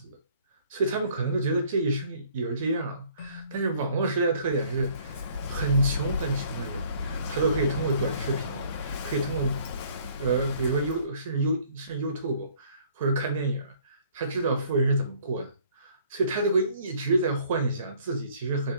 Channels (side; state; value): both; inverted; correlation -0.59